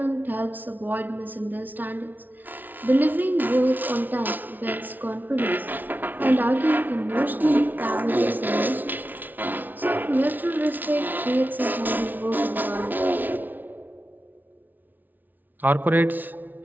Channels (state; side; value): late; left; 0.084 ms